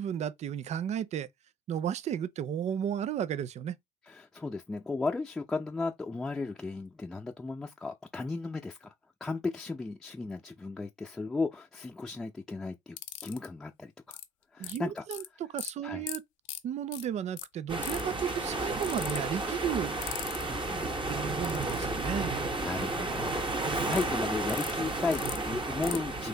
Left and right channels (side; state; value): both; normal; correlation 0.56